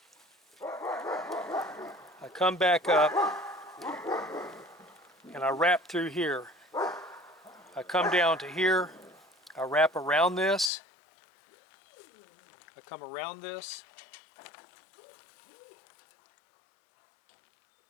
I come back up and I wrap through here. I come down to here. I wrap around this. I come around this.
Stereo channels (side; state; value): right; drops out; at 10.7 s